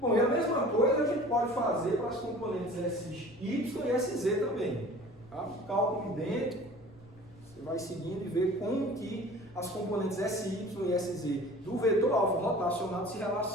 Bom, e a mesma coisa a gente pode fazer para as componentes SY e SZ também. Tá? Cálculo idêntico, você vai seguindo e vê como que as componentes SY e SZ do vetor alfa rotacionado se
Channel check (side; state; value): left; noise; rumble, 25 dB below the sound